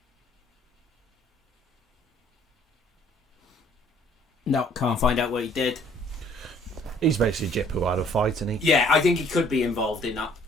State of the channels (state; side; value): normal; both; correlation 0.59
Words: No, can't find out what he did. He's basically Jip who had a fight, isn't he? Yeah, I think he could be involved in that